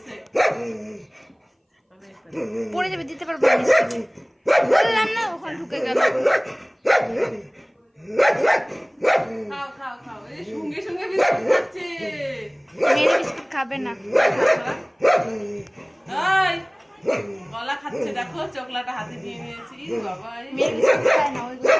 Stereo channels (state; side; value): identical; both; correlation 1.00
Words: পড়ে যাবে, দিতে পারবো না। বললাম না, ওখানে ঢুকে গেল। খাও খাও খাও, এই সঙ্গে সঙ্গে বিস্কুট খাচ্ছে। মেরে বিস্কুট খাবে না। এই গলা খাচ্ছে, দেখো চকলাটা হাতে নিয়ে নিয়েছি। বাবা মেরে বিস্কুট খায় না, ওইগুলো